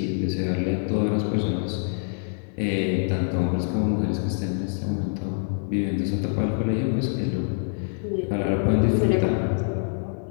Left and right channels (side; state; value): right; silent; digital silence